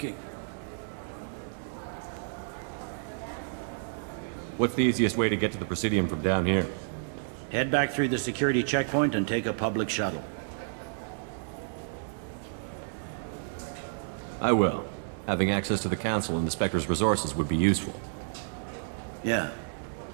What's the easiest way to get to the Presidium from down here? Head back through the security checkpoint and take a public shuttle. I will. Having access to the Council and the Spectre's resources would be useful. Yeah.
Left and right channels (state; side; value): silent; left; digital silence